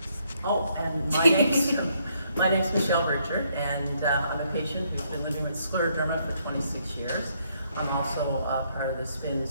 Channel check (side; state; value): both; inverted; correlation -0.71